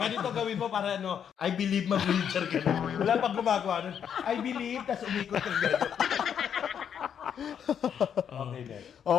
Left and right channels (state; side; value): quieter; right; 8.3 dB